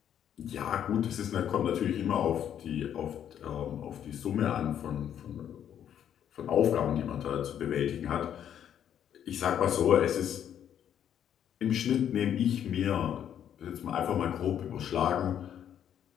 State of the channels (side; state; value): right; quieter; 9.7 dB